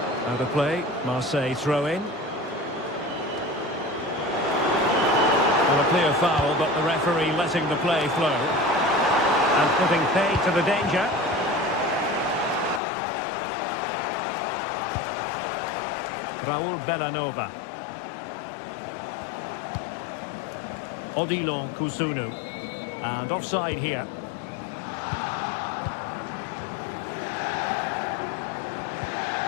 Out of play. Marseille throw in. Well, a clear foul, but the referee letting the play flow. And putting paid to the danger. Raul Bellanova. Odilon Kusunu. And offside here.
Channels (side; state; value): right; drops out; at 12.8 s